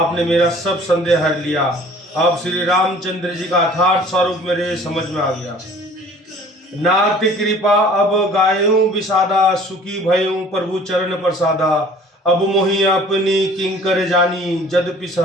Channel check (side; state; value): both; normal; correlation 0.50